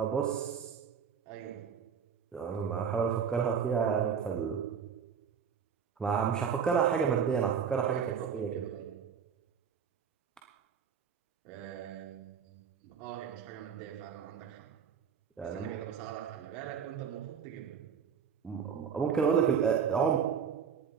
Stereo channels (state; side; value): quieter; left; 7.1 dB